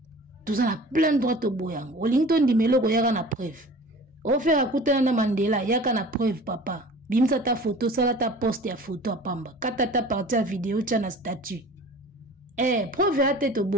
Tous en a plein droit to boya yango. Olington di meloko yaka na preuve. O faire akutana na Mandela yaka na preuve papa. Bimsa ta photo, ça ta poste ya photo à pamba. Kata ta partie à vidéo, tu as na statut. Preuve à tête au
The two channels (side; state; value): both; normal; correlation 0.42